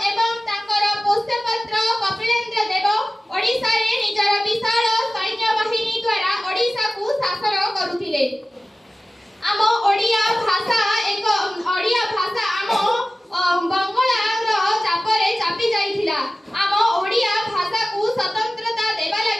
एवं तांकर पोष्यपुत्र कपिलेन्द्र देव ओडिसा रे निजर विशाल सैन्य बाहिनी द्वारा ओडिसा को शासन करुथिले। आम ओडिया भाषा आम बंगला चापरे चापी जाइथिला। आम ओडिया भाषा को स्वतंत्रता देबा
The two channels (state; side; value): normal; both; correlation 0.96